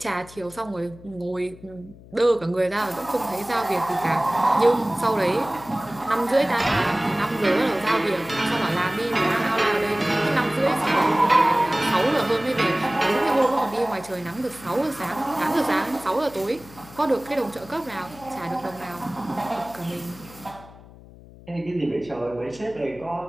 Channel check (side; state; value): left; noise; hum, 20 dB below the sound